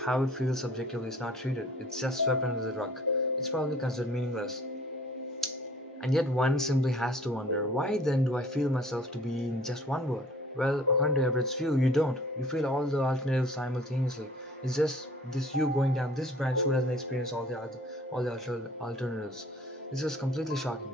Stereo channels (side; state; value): both; normal; correlation 0.52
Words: how it feels subjectively is not treated. It's just swept under the rug. It's probably considered meaningless. And yet one simply has to wonder, why then do I feel myself to be in just one word? Well, according to Everett's view, you don't. You feel all the alternatives simultaneously. It's just this you going down this branch who doesn't experience all the alternatives. This is completely shocking.